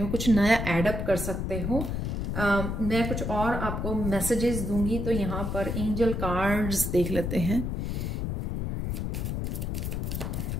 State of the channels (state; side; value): noise; left; rumble, 2 dB below the sound